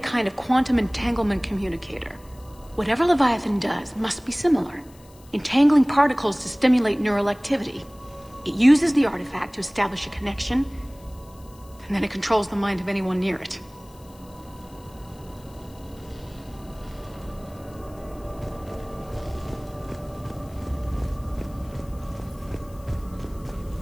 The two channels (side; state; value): left; noise; hiss, 26 dB below the sound